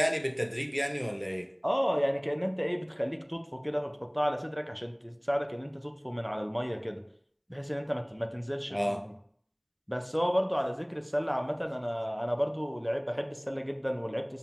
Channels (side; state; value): both; identical; correlation 1.00